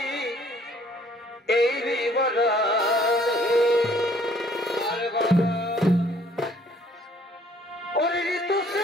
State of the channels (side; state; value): both; normal; correlation 0.60